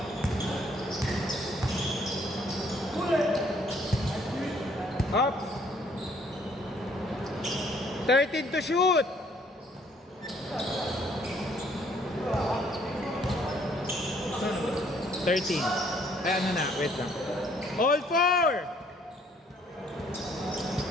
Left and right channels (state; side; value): normal; both; correlation 0.63